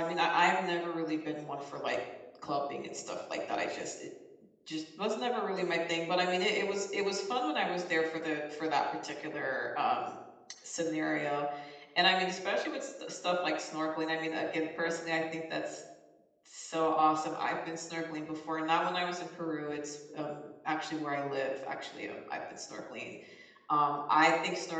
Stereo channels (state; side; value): identical; both; correlation 1.00